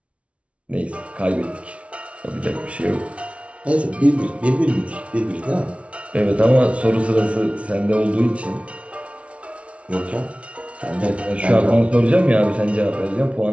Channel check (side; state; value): left; late; 0.062 ms